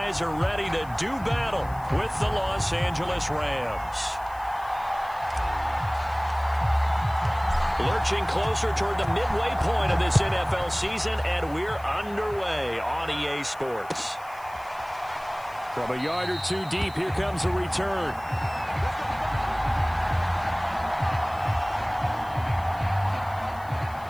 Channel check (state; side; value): noise; left; hiss, 24 dB below the sound